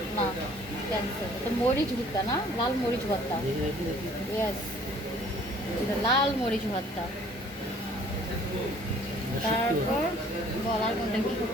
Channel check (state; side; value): normal; both; correlation 0.56